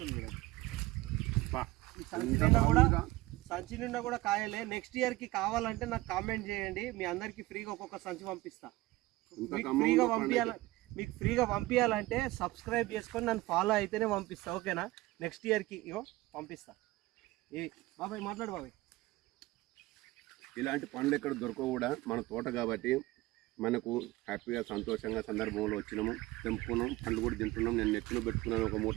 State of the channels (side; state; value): left; quieter; 19.1 dB